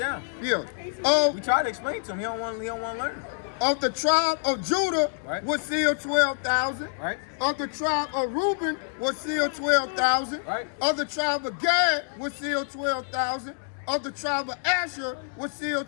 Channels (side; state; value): right; silent; digital silence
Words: Yeah. We try to explain to him. He don't want to learn. Of the tribe of Judah Right. was sealed 12,000. Right? Of the tribe of Reuben was sealed 12,000. Right. Of the tribe of Gad was sealed 12,000. Of the tribe of Asher was